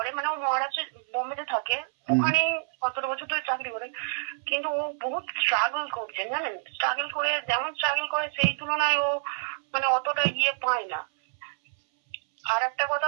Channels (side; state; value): left; silent; 60 dB below the other